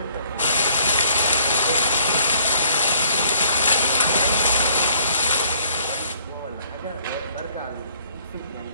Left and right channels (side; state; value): both; inverted; correlation -0.62